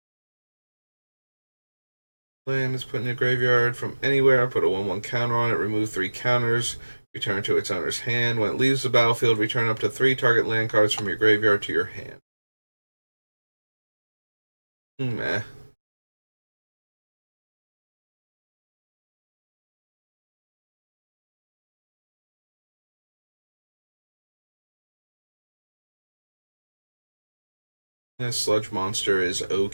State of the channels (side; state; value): both; inverted; correlation -1.00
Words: Land is put in a graveyard from anywhere. Put a 1/1 counter on it. Remove 3 counters. Return to its owner's hand. When it leaves the battlefield, return up to 3 target land cards from your graveyard to your hand. Meh. This sludge monster is